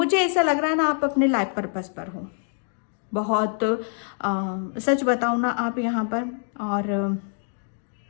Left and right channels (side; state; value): right; silent; 56 dB below the other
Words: ऐसा लग रहा है ना आप अपने लाइफ पर्पस पर हो बहुत, सच बताऊँ ना आप यहाँ पर, और